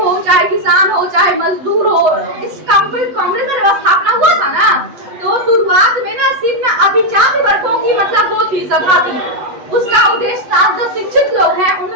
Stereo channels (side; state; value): left; late; 8.0 ms